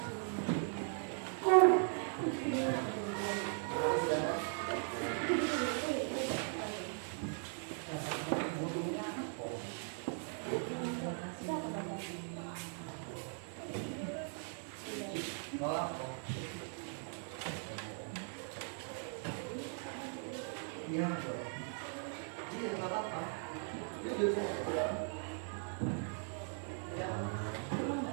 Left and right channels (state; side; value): silent; left; 52 dB below the other